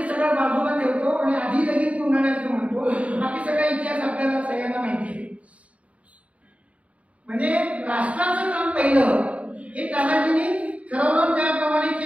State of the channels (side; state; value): left; late; 0.066 ms